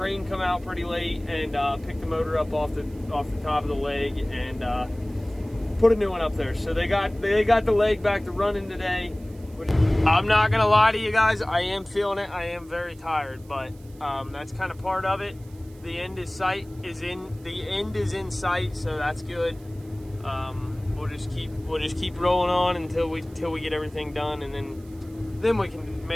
come out pretty late and pick the motor up off the top of the leg and put a new one up there. So they got the leg back to running today. Which, I'm not gonna lie to you guys, I am feeling it. I am very tired, but that's kind of part of it. The end is in sight, so that's good. We'll just keep rolling on until we get everything done, and then we can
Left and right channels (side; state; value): right; noise; hiss, 27 dB below the sound